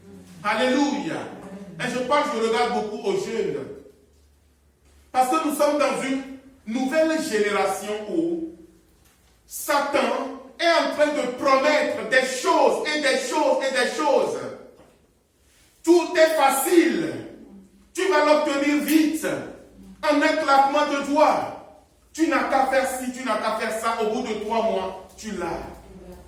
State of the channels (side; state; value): both; identical; correlation 1.00